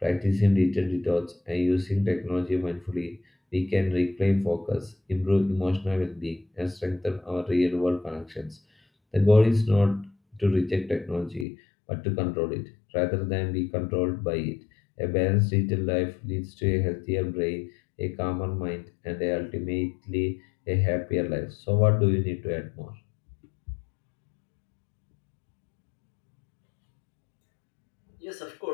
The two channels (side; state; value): right; drops out; at 11.5 s